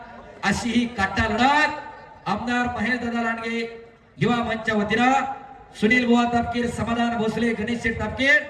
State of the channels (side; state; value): both; identical; correlation 1.00